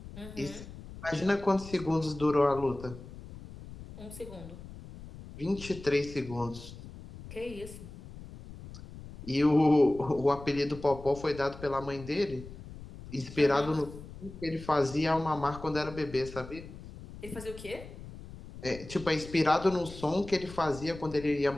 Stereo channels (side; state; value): left; noise; rumble, 14 dB below the sound